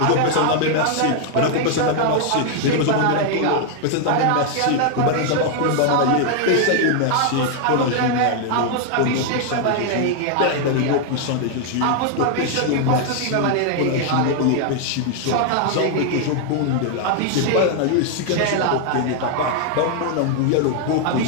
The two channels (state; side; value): different; both; correlation 0.00